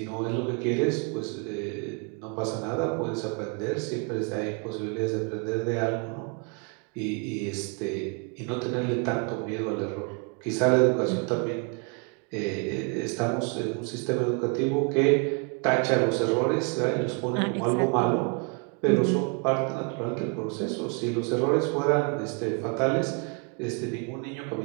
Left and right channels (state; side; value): quieter; left; 35.1 dB